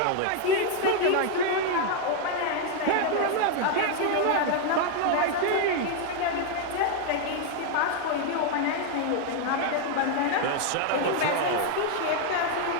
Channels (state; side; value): different; both; correlation 0.00